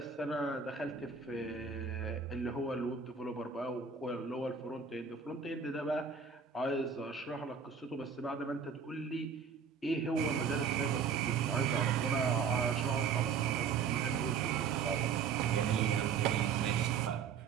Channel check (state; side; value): quieter; left; 6.3 dB